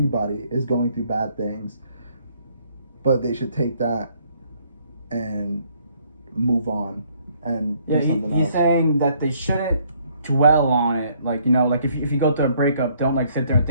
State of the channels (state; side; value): inverted; both; correlation -0.65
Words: is going through bad things, but they should take that and move on and do something else. He's saying that they shouldn't dwell on it. Like, you know, like if you go through a breakup, don't like sit there and